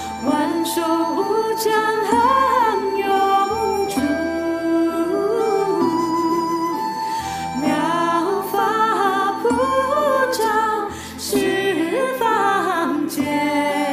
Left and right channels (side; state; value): both; identical; correlation 1.00